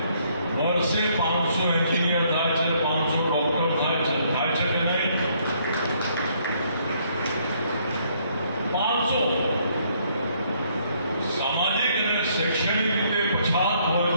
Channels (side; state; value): both; inverted; correlation -0.68